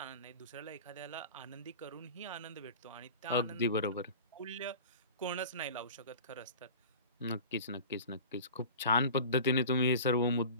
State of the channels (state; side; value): inverted; both; correlation -0.38